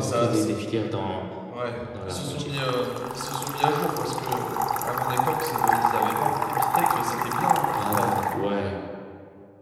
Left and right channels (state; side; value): identical; both; correlation 1.00